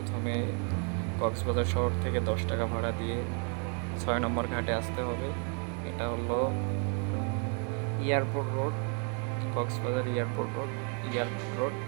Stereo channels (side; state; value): left; quieter; 39.7 dB